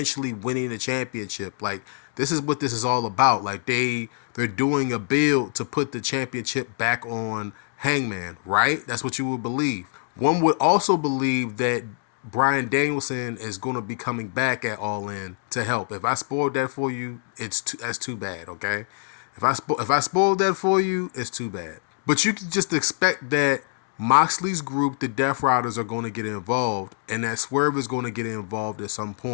winning the championship. Like, this is what this is all about. Like, they're doing a build to put the championship back on Hangman, right? That's what you would believe. One would also believe that Bryan Danielson is going to be coming back at All In to help. If I spoiled that for you, that's too bad, okay? If I spoiled that for you, it's too bad. But you can just expect that Moxley's group, the Death Riders, are going to get involved, and that Swerve is going to get involved at some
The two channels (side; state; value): right; silent; 62 dB below the other